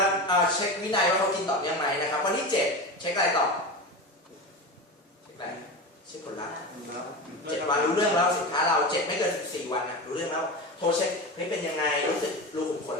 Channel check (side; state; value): both; normal; correlation 0.25